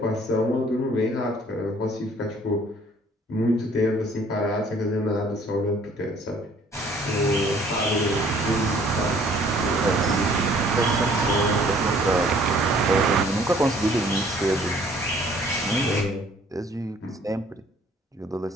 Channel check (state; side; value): normal; both; correlation 0.57